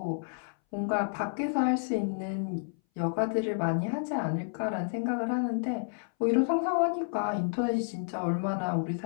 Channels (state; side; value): silent; right; 58 dB below the other